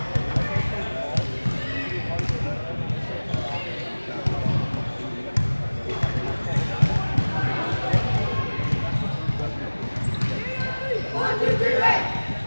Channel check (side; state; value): both; inverted; correlation -1.00